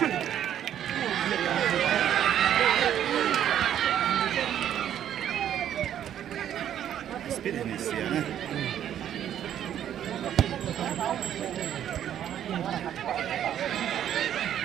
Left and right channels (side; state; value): left; quieter; 10.4 dB